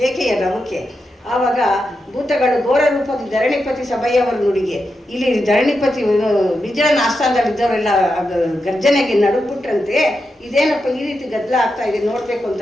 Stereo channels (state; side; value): normal; both; correlation 0.87